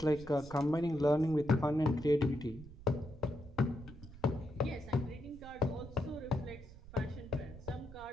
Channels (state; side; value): noise; right; rumble, 16 dB below the sound